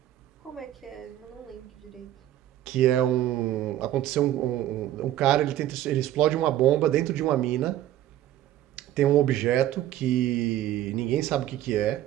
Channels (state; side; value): quieter; left; 13.1 dB